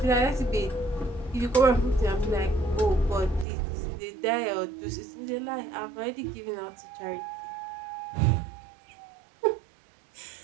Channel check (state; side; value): drops out; left; at 3.5 s